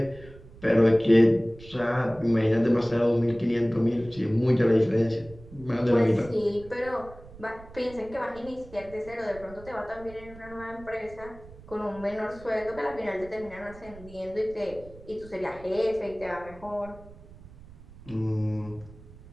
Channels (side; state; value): right; noise; rumble, 19 dB below the sound